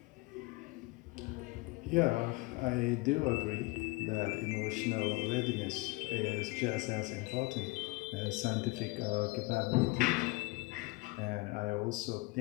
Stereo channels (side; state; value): right; quieter; 23.5 dB